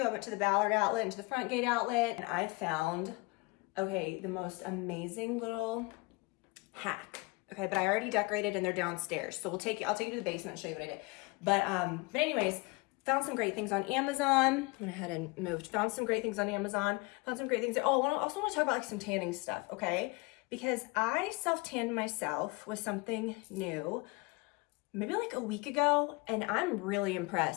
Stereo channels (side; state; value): right; quieter; 26.1 dB